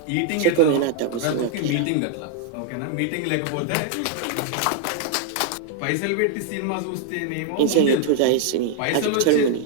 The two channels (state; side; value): different; both; correlation 0.00